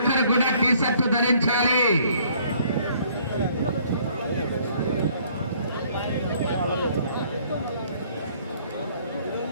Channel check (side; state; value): both; inverted; correlation -0.61